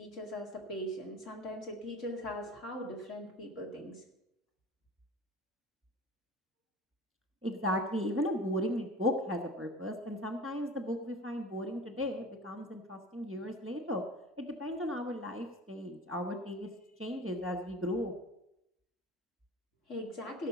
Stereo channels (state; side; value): normal; both; correlation 0.38